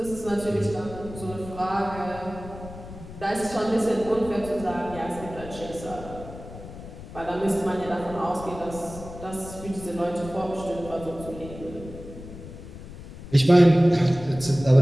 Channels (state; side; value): noise; left; rumble, 14 dB below the sound